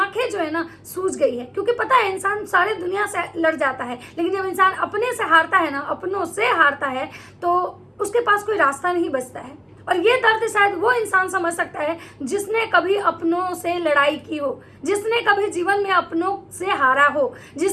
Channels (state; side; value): identical; both; correlation 1.00